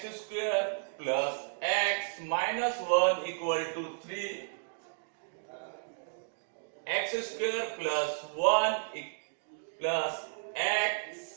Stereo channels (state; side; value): silent; left; digital silence